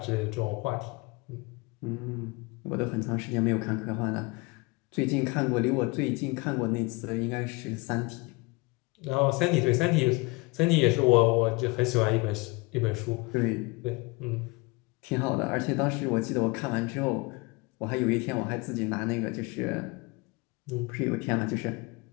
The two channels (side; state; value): right; quieter; 25.5 dB